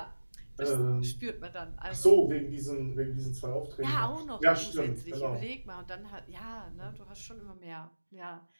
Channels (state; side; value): inverted; both; correlation -1.00